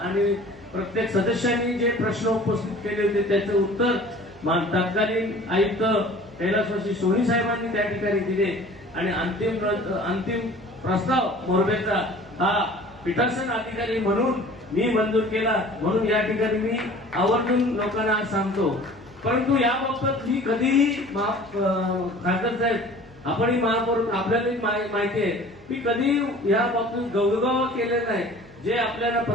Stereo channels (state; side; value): noise; right; hum, 25 dB below the sound